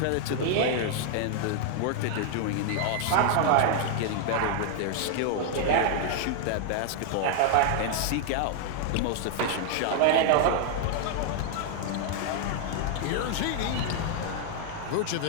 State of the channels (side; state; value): both; different; correlation 0.00